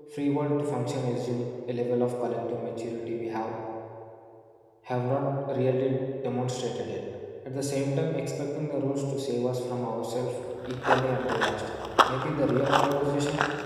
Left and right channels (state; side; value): identical; both; correlation 1.00